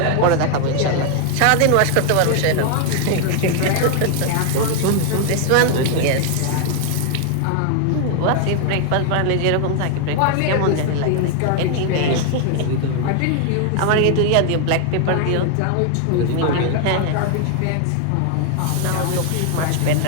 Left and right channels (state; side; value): different; both; correlation 0.00